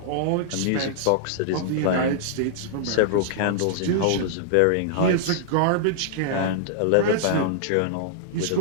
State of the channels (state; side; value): different; both; correlation -0.01